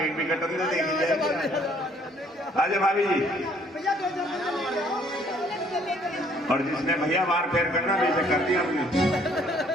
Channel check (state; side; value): normal; both; correlation 0.62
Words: भी कटन दे, देखी जाएगी। आ जाओ भाभी जी। और जिसने भैया बार फेर करना वैसे कर दिया हमने।